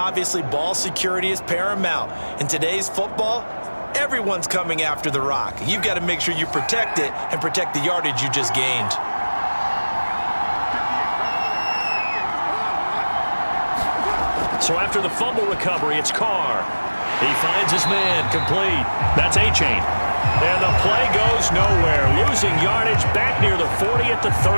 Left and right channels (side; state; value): both; inverted; correlation -1.00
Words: ball security is paramount. In today's football, everyone's coming after the rock. You've got to make sure you protect it and protect the yardage you just gained. So after the fumble recovery, it's Carr. He finds his man, complete. That's A-Chain. And the play goes nowhere. Losing yardage back near the 40 at the